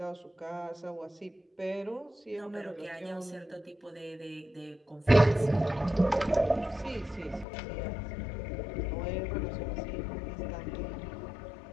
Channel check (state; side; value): drops out; right; at 7.5 s